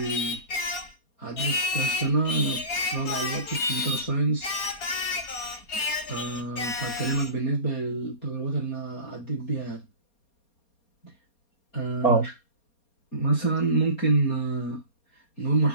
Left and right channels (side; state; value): right; late; 4.3 ms